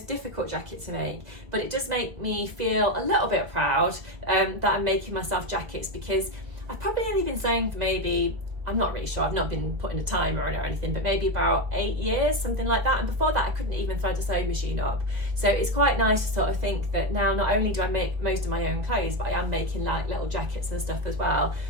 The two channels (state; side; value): late; left; 1.7 ms